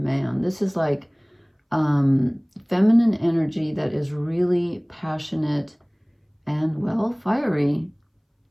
This is like feminine energy that is really passionate and, well, fiery.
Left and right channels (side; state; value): both; identical; correlation 1.00